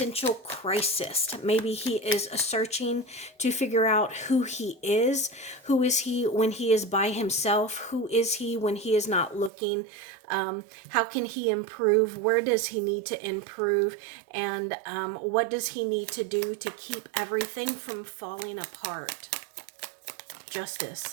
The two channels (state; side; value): drops out; left; at 9.5 s